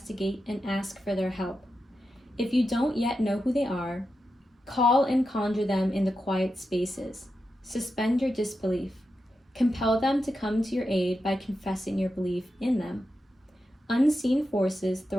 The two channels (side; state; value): both; normal; correlation 0.89